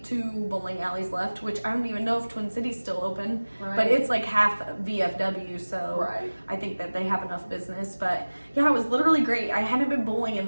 2 bowling alleys left, which I don't even know if Twin City's still open. Right. But it's like half VFW, so Right. I think that they have enough business. But yeah, it was literally great. I hadn't been bowling in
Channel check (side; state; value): both; inverted; correlation -1.00